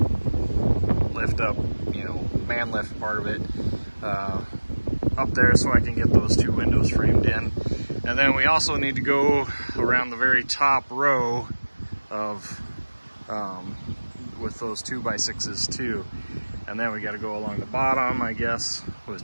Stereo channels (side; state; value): both; inverted; correlation -1.00